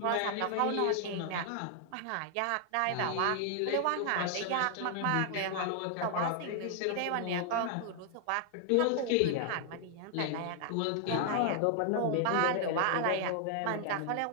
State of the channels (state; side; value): different; both; correlation 0.00